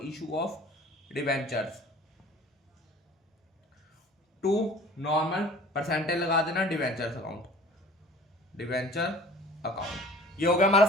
issue of debentures to normal percentage लगा देना डिवेंचर अकाउंट। ये हो गया हमारा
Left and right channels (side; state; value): both; normal; correlation 0.47